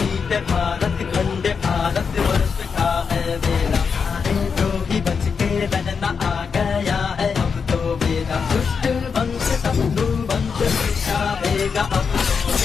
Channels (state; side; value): quieter; right; 5.8 dB